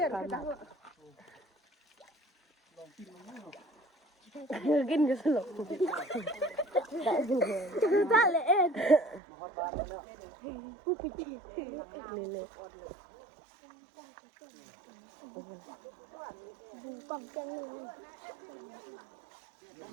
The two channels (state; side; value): drops out; left; at 9.2 s